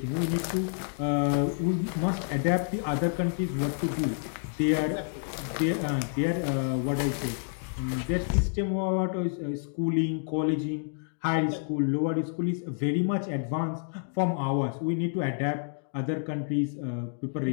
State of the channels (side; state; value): right; silent; digital silence